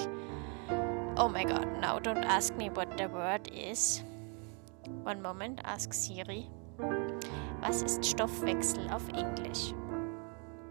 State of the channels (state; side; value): quieter; left; 37.1 dB